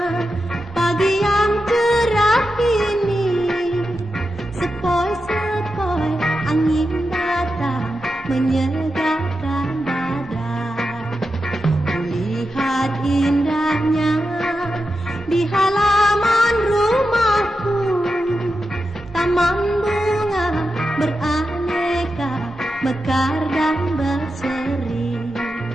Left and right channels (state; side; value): normal; both; correlation 0.89